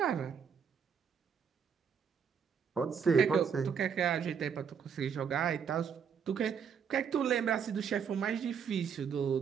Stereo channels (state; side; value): quieter; left; 7.0 dB